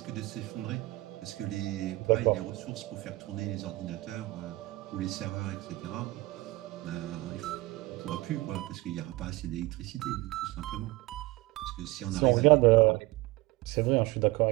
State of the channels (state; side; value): quieter; left; 20.8 dB